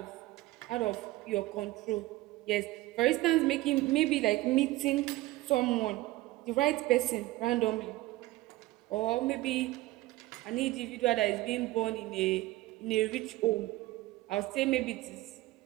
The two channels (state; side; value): quieter; left; 18.5 dB